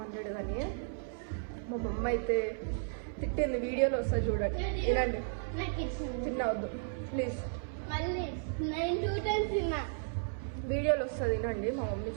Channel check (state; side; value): silent; left; 55 dB below the other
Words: కానీ మా మమ్మ అయితే తిట్టింది వీడియోలో వస్తుంది చూడండి వినండి తినవద్దు ప్లీజ్ వీడియోలో వస్తుంది వినండి మా మమ్మీ